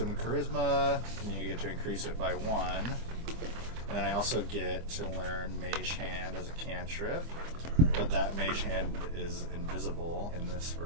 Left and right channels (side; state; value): left; late; 25 ms